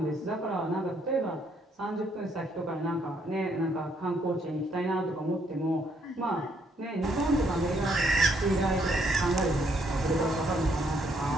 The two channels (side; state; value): both; normal; correlation 0.71